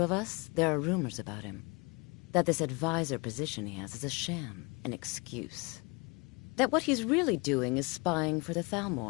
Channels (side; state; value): right; quieter; 28.8 dB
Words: us, there are rumors about him. That this advisor position he has is a sham, an excuse. That what he's really doing is spying for the